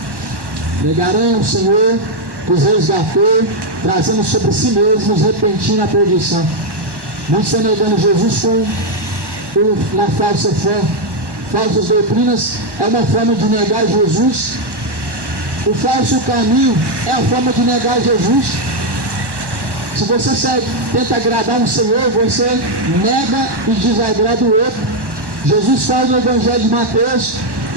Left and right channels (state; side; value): late; left; 1.1 ms